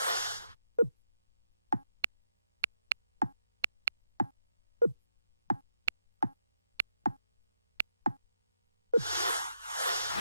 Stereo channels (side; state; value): both; inverted; correlation -0.81